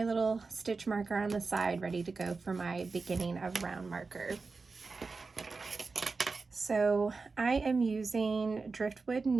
little stitch marker on the side ready to go for my beginning of round marker. So I am using driftwood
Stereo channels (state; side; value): quieter; left; 4.2 dB